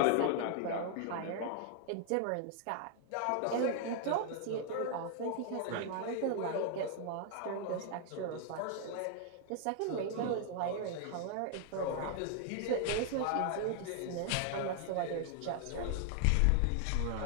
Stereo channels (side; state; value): both; different; correlation 0.00